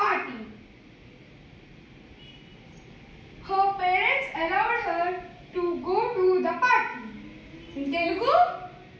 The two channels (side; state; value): both; identical; correlation 1.00